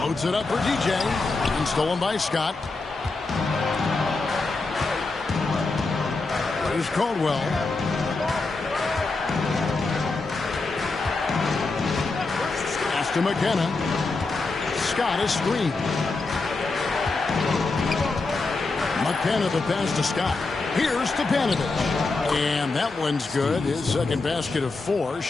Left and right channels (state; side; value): quieter; right; 3.7 dB